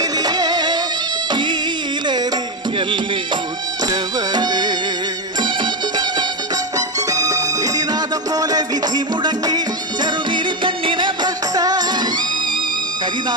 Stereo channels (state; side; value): normal; both; correlation 0.10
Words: കീലറിയല്ലേ ഉറ്റവരെ. വിധിനാഥം പോലെ വിധി മുടങ്ങി ചെറുനീലി പെണ്ണിനെ ഭ്രഷ്ട.